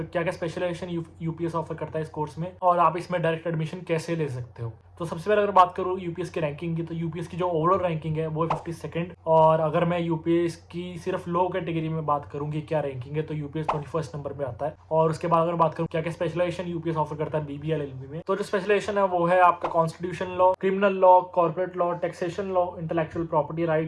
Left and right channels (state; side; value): identical; both; correlation 1.00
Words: क्या स्पेशलाइजेशन यूपीएस ऑफर करता है इस कोर्स में, और आप इसमें डायरेक्ट एडमिशन कैसे ले सकते हो। तो सबसे पहले अगर बात करूँ यूपीएस की रैंकिंग की, तो यूपीएस की जो ओवरऑल रैंकिंग है वो है 52nd। और अगर मैं यूपीएस की सिर्फ लो कैटेगरी में बात करूँ कि क्या रैंकिंग है, तो यूपीएस 21st नंबर पे आता है। और उसके बाद अगर बात करूँ क्या क्या स्पेशलाइजेशन यूपीएस ऑफर करता है बीबीए एलएलबी में, तो जो स्पेशलाइजेशन है वो है आपका constitution law, criminal law, corporate law, taxation law, intellectual property